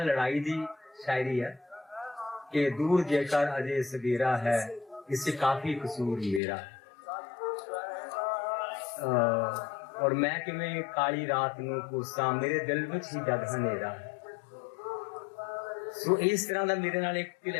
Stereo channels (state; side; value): drops out; right; at 6.4 s